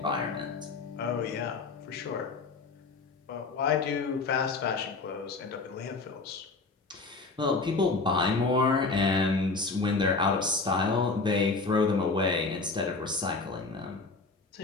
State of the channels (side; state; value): right; quieter; 3.9 dB